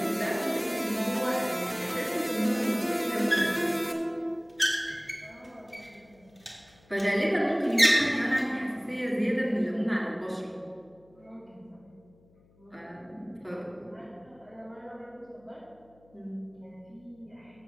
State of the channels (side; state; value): left; noise; hum, 30 dB below the sound